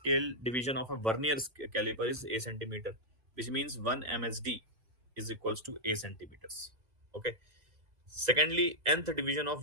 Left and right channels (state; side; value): late; left; 2.0 ms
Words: division of a Vernier caliper is A centimeter, which means 1 MSD is equals to A centimeters. Okay. Secondly, nth division of